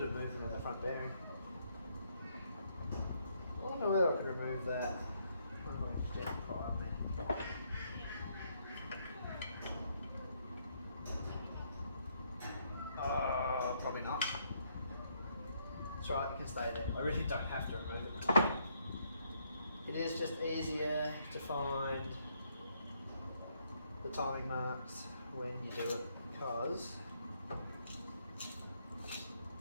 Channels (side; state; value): both; inverted; correlation -0.73